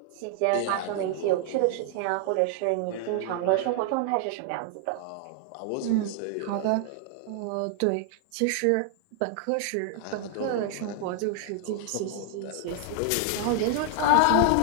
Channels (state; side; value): different; both; correlation 0.00